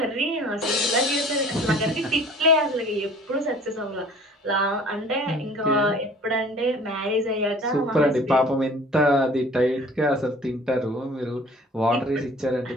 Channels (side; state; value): both; normal; correlation 0.49